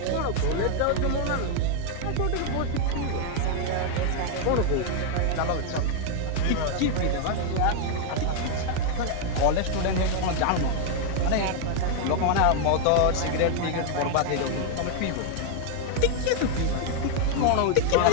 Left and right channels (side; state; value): both; different; correlation 0.00